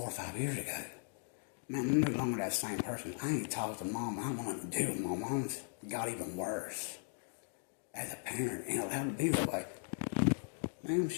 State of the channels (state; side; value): silent; right; 52 dB below the other